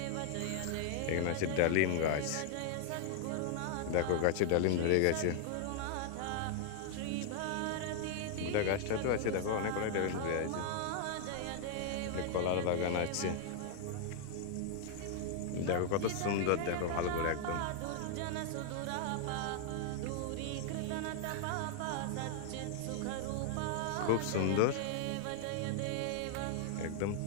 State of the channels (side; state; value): both; different; correlation 0.00